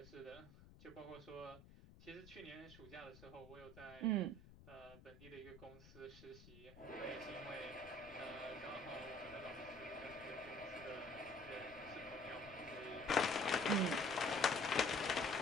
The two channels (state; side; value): noise; left; rumble, 19 dB below the sound